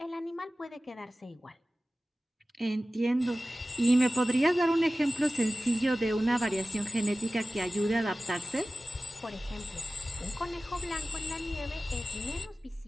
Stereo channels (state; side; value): normal; both; correlation 0.96